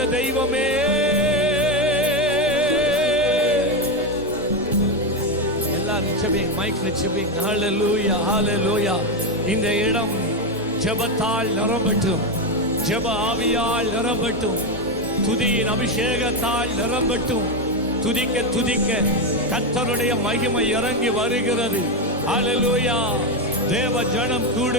தெய்வமே, எல்லாரும் ஜெபிங்க, மைக்ல ஜெபிங்க. ஹல்லேலூயா ஹல்லேலூயா. இந்த இடம் ஜெபத்தால் நிரம்பட்டும், ஜெப ஆவியால் நிரம்பட்டும், துதியின் அபிஷேகத்தால் நிரம்பட்டும். துதிக்க துதிக்க கர்த்தருடைய மகிமை இறங்கி வருகிறது. ஹல்லேலூயா. தேவ ஜனம்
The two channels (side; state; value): both; normal; correlation 0.10